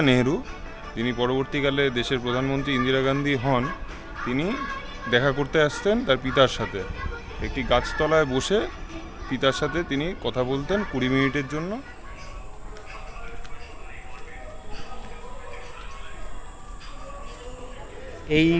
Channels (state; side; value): identical; both; correlation 1.00